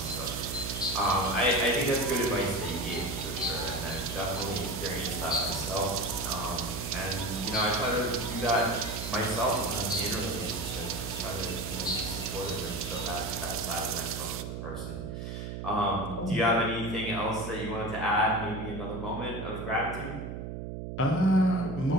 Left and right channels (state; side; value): noise; right; hum, 6 dB below the sound